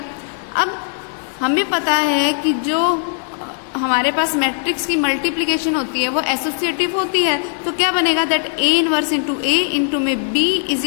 अब हमें पता है कि जो हमारे पास मैट्रिक्स की मल्टीप्लिकेशन होती है वो एसोसिएटिव होती है, तो क्या बनेगा? That A inverse into A into में B is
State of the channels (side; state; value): right; silent; digital silence